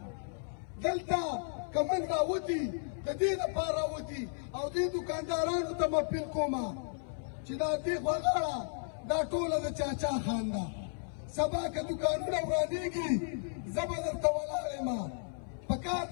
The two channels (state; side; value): silent; right; 55 dB below the other